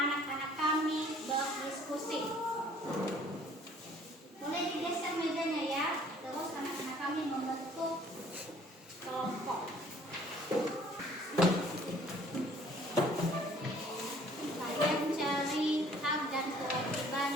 kami berdiskusi. Boleh digeser mejanya ya. Terus anak-anak kami membentuk kelompok. Kalian cari hak dan kewajiban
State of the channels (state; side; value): normal; both; correlation 0.56